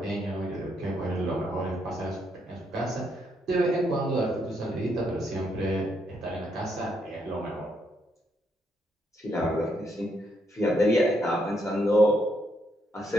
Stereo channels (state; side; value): normal; both; correlation 0.76